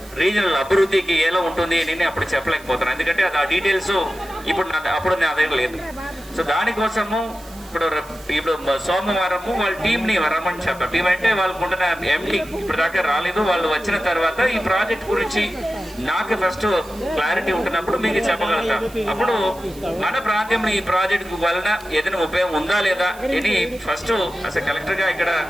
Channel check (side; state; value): right; noise; hiss, 21 dB below the sound